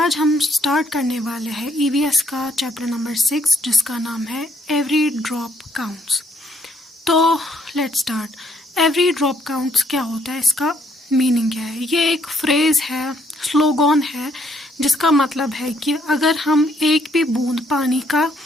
हम स्टार्ट करने वाले हैं ईवीएस का चैप्टर नंबर 6 जिसका नाम है एवरी ड्रॉप काउंट्स। तो let's start. Every drop counts क्या होता है, इसका मीनिंग क्या है? ये एक फ्रेज़ है, स्लोगन है, जिसका मतलब है कि अगर हम एक भी बूंद पानी का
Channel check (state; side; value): normal; both; correlation 0.69